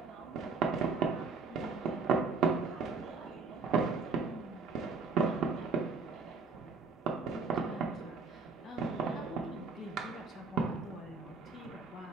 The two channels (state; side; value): quieter; left; 4.4 dB